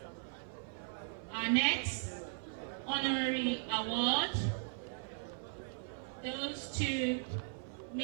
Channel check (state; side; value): silent; left; 52 dB below the other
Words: Our next honorary award goes to